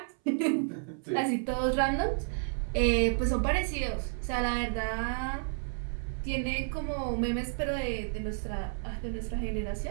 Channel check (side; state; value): left; silent; 57 dB below the other